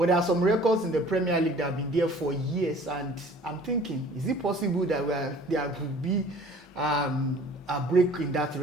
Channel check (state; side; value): normal; both; correlation 0.50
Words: there are some records in the Premier League that have been there for years, and I'm thinking, is it possible that there could be a break in that